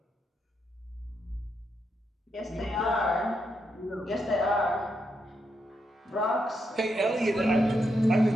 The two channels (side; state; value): both; normal; correlation 0.81